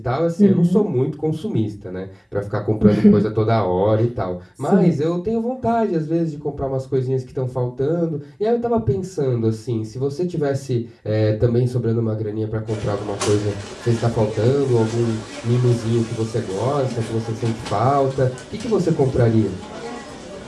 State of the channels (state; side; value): identical; both; correlation 1.00